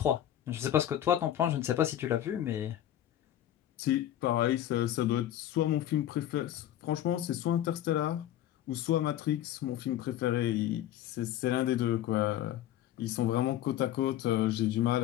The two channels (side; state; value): right; quieter; 12.2 dB